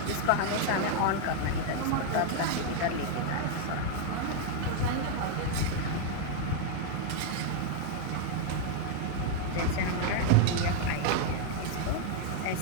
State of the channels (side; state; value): both; different; correlation 0.00